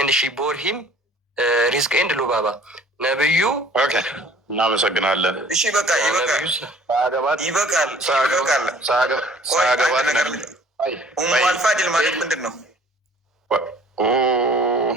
ሺ ቦር ሂም ሪዝቅ ኤንድ ሉባባ። ነብዩ እናመሰግናለን። እሺ በቃ ይበቃል። ኡሙ አልፋድል ማለት ምንድን ነው?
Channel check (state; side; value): normal; both; correlation 0.52